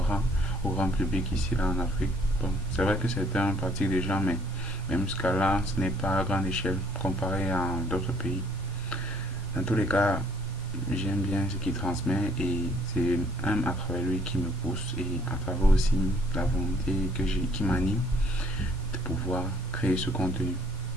au grand public ici là en Afrique. Bon, c'est vrai que certains pratiquent déjà, mais même jusqu'à là, ce n'est pas à grande échelle comparé à d'autres pays. Dans tous les cas, j'aime bien ce qu'il transmet et c'est même à travers lui qui me pousse et à travers aussi la volonté qui m'anime de pouvoir créer ce contenu.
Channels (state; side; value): normal; both; correlation 0.62